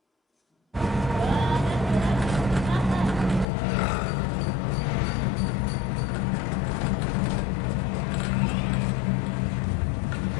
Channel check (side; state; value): right; drops out; at 3.5 s